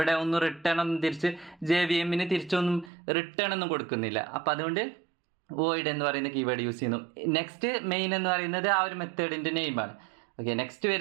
ഒന്നും റിട്ടേൺ ഒന്നും തിരിച്ച് JVM തിരിച്ചൊന്നും റിട്ടേൺ ഒന്നും കൊടുക്കുന്നില്ല. അപ്പോൾ അതുകൊണ്ട് വോയിഡ് എന്ന് പറയുന്ന കീവേഡ് യൂസ് ചെയ്യുന്നു. നെക്സ്റ്റ് മെയിൻ എന്ന് പറയുന്നത് ആ ഒരു മെത്തേഡിൻ്റെ നെയിമാണ്. ഓക്കെ, നെക്സ്റ്റ്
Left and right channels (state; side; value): drops out; left; at 2.9 s